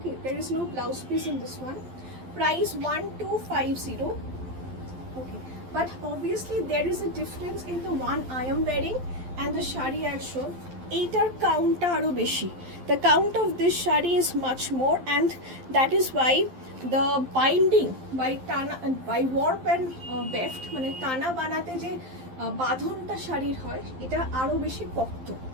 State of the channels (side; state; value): left; late; 12 ms